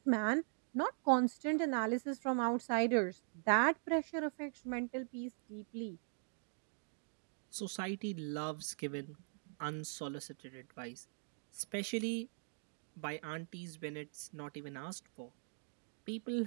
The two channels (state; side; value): silent; left; digital silence